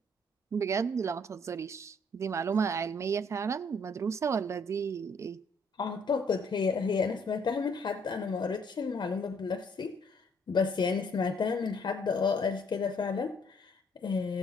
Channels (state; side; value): normal; both; correlation 0.64